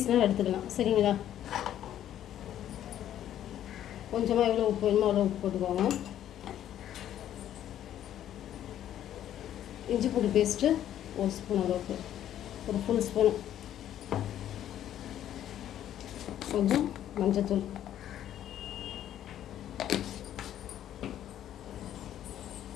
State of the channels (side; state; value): right; quieter; 11.3 dB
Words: எடுத்துக்கலாம். சரிங்களா? கொஞ்சமாக எவ்வளோ உப்பு வேணுமோ அவ்வளோ உப்பு போட்டுக்கோங்க. இஞ்சி பூண்டு பேஸ்ட்டு 1 ஸ்பூன் அளவுக்கு, ஒரு ஃபுல் ஸ்பூன். கொஞ்சம் மஞ்சத்தூள்,